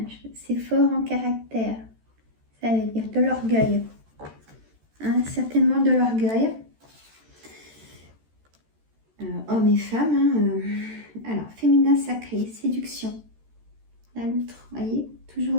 c'est fort en caractère. Ça veut dire de l'orgueil. Hein, certainement de l'orgueil. Hommes et femmes. Hein, alors, féminin sacré, séduction. La loutre, vous voyez, toujours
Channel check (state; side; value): late; left; 13 ms